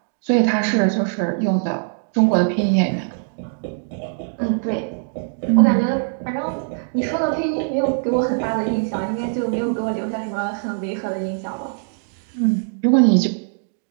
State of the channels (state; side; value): silent; left; digital silence